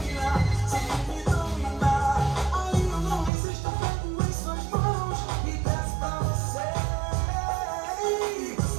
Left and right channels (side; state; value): left; drops out; at 3.3 s